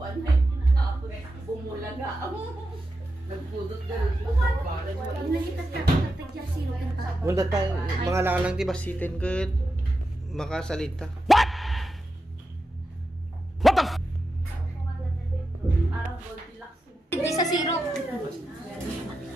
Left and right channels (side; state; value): both; normal; correlation 0.89